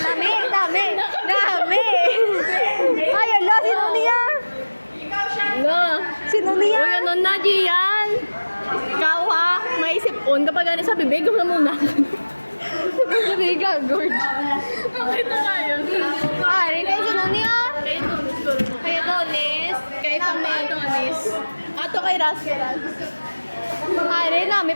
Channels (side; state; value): both; inverted; correlation -1.00